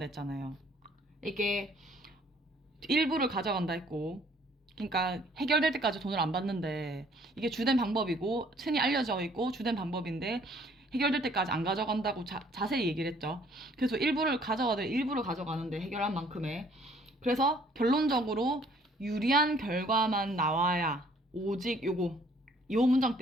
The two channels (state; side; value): normal; both; correlation 0.60